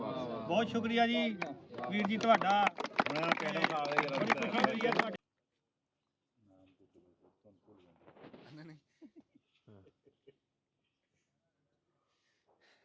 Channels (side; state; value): both; identical; correlation 1.00